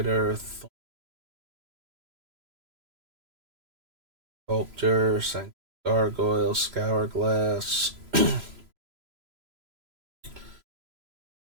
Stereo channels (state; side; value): late; left; 3.0 ms